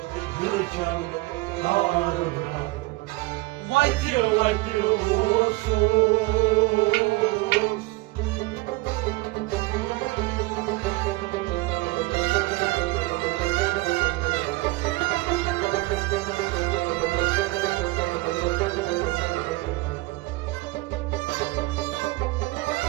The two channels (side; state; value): left; quieter; 22.1 dB